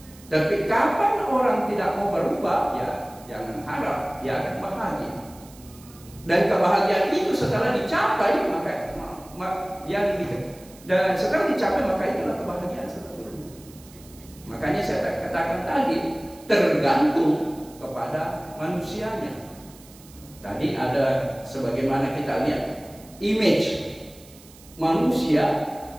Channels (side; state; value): right; noise; hiss, 23 dB below the sound